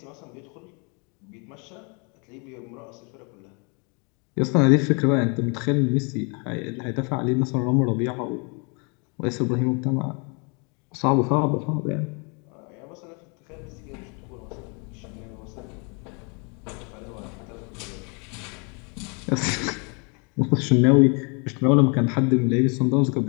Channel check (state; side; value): quieter; right; 34.0 dB